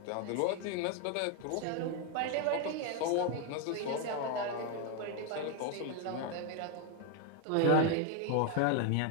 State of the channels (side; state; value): both; different; correlation 0.01